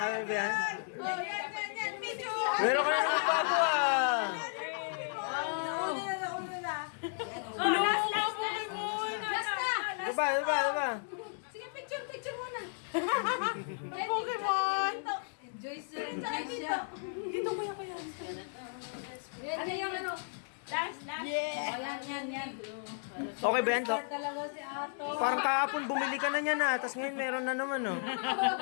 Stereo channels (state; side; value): silent; right; digital silence